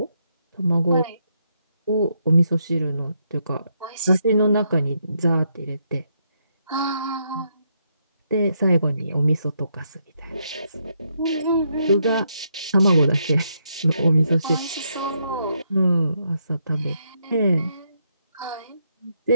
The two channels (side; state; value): both; inverted; correlation -0.78